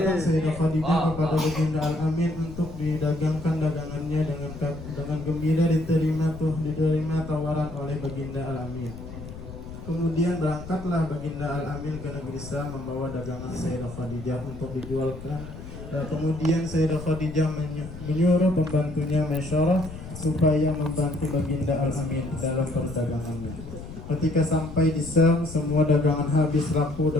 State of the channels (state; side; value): noise; left; rumble, 12 dB below the sound